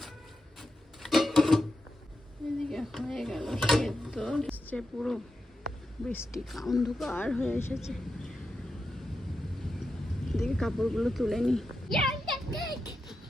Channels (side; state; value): both; normal; correlation 0.88